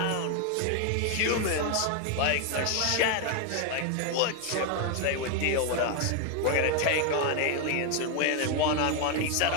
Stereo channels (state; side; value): different; both; correlation 0.01